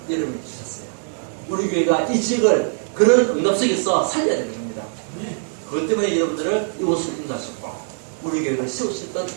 여러분이 주셨어요. 우리 교회가 이 지역을 그런 응답 속에서 살려야 되는 겁니다. 그것 때문에 여러분들을 이곳을 인도하셨고 우리 교회를 세우셨던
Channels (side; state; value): left; silent; digital silence